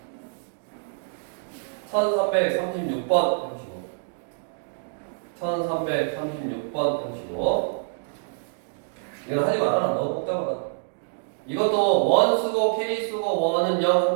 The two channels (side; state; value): left; silent; digital silence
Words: 1336번 해보시고 1336번 해보시고 이건 하지 말아라. 너무 복잡하다. 이것도 원 쓰고 k 쓰고 원은 0 한